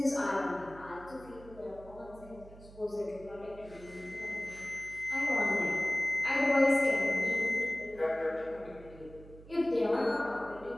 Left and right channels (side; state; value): right; noise; hum, 19 dB below the sound